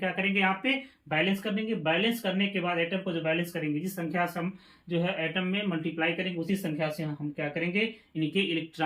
करेंगे, यहाँ पे बैलेंस कर देंगे। बैलेंस करने के बाद एटम को जो बैलेंस करेंगे, जिस संख्या से हम जो है एटम में मल्टीप्लाई करेंगे, उसी संख्या से हम क्या करेंगे, इनके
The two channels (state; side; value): identical; both; correlation 1.00